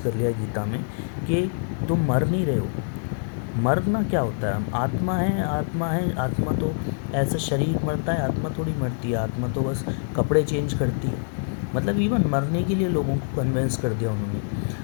लिया गीता में कि तुम मर नहीं रहे हो। मरना क्या होता है, आत्मा है, आत्मा तो ऐसा शरीर मरता है, आत्मा थोड़ी मरती है, आत्मा तो बस कपड़े चेंज करती है। मतलब इवन मरने के लिए लोगों को कन्विंस कर दिया उन्होंने,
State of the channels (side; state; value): right; silent; 62 dB below the other